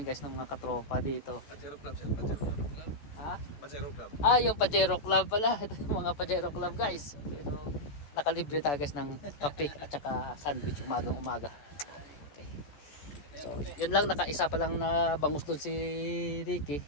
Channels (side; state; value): right; late; 14 ms